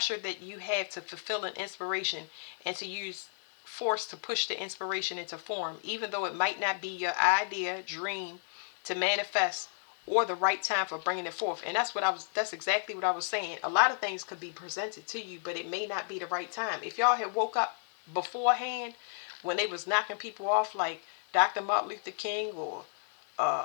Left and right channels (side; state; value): right; silent; 56 dB below the other